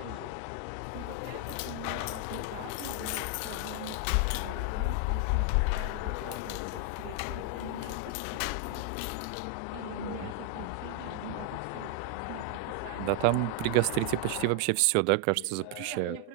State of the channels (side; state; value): both; different; correlation 0.00